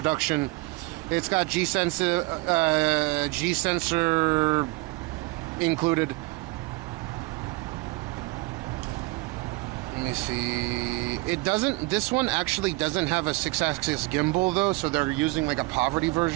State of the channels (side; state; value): left; quieter; 23.8 dB